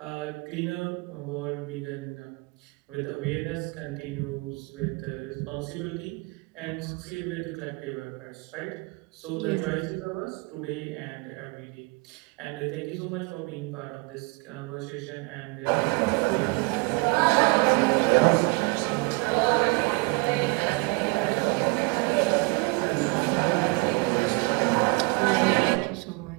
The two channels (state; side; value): quieter; left; 29.1 dB